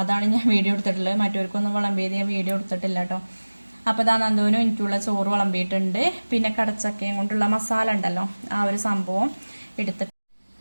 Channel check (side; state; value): both; inverted; correlation -1.00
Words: അതാണ് ഞാൻ വീഡിയോ എടുത്തിട്ടുള്ളത്. മറ്റവർക്കൊന്നും വിളമ്പിയത് ഞാൻ വീഡിയോ എടുത്തിട്ടില്ല കേട്ടോ. അപ്പോൾ ഇതാ നന്ദൂനും എനിക്കുള്ള ചോറ് വിളമ്പിയിട്ടുണ്ട്. പിന്നെ കടച്ചക്കയും കൊണ്ടുള്ള മസാല ഉണ്ടല്ലോ, ആ ഒരു സംഭവം എടുത്തിട്ട്